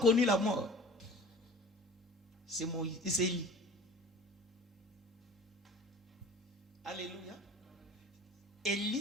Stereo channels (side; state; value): both; normal; correlation 0.42